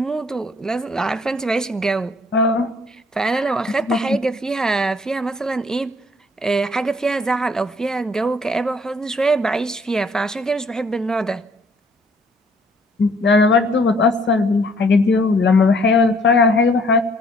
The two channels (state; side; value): normal; both; correlation 0.61